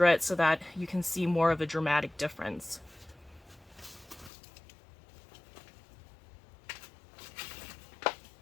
so that you can see more of a dramatic difference.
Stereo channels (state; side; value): drops out; right; at 4.3 s